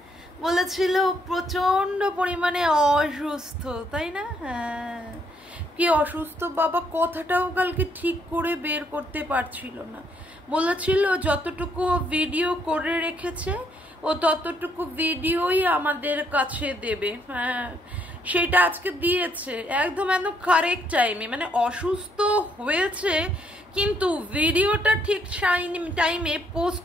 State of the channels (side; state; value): left; noise; hum, 29 dB below the sound